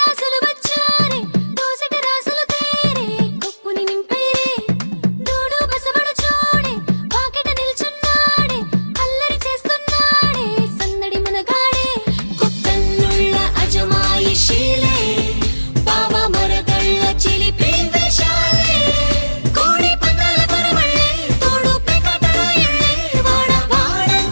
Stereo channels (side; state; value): both; inverted; correlation -1.00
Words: వచ్చారే దోసటి రాసులు తేరే కొప్పుని నింపేరే దూడు బసవడు చూడే పాకెట నిల్చున్నాడే అల్లరి చేస్తున్నాడే సందడి మనగాడే కొత్తన్నుళ్ళ అజమాయిషీలే బావ మరదళ్ళ చిలిపి వేషాలే కోడి పందాల పరమళ్ళే తోడు పెకటరాయళ్ళే వాడ